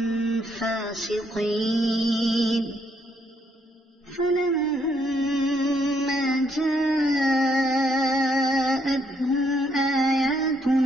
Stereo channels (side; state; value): both; normal; correlation 0.72